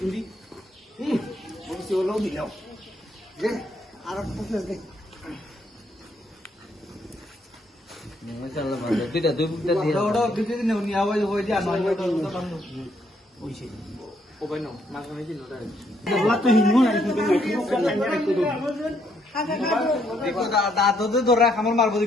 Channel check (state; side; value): normal; both; correlation 0.72